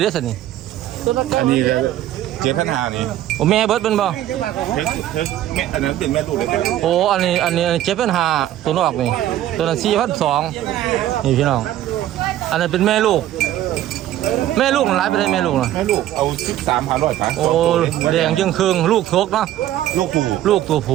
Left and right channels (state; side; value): quieter; left; 13.0 dB